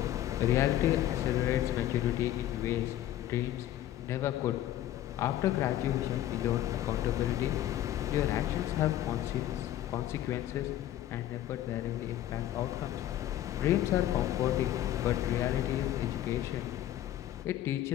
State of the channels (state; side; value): quieter; right; 12.8 dB